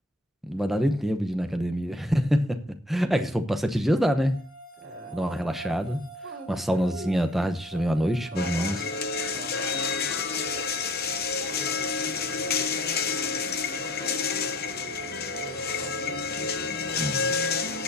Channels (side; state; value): both; normal; correlation 0.57